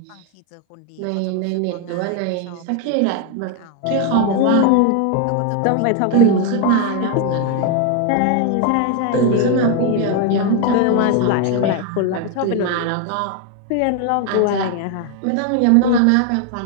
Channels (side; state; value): both; different; correlation 0.01